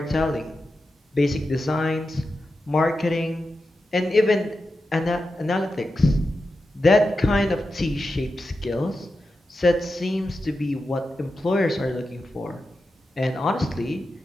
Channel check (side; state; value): both; normal; correlation 0.90